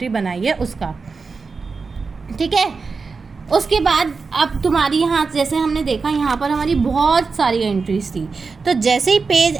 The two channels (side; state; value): left; quieter; 4.6 dB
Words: बनाई है उसका। ठीक है, उसके बाद अब तुम्हारी यहाँ जैसे हमने देखा यहाँ पर हमारी बहुत सारी एंट्रीज थी, तो जैसे ही पेज